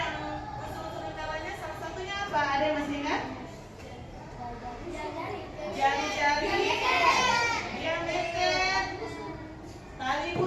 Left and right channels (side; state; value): both; identical; correlation 1.00